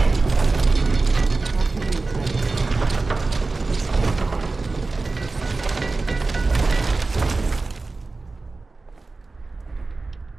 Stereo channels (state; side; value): quieter; left; 3.6 dB